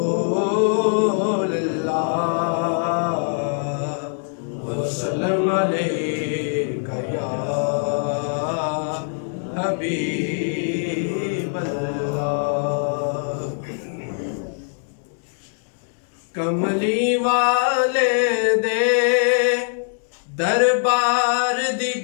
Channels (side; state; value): right; silent; digital silence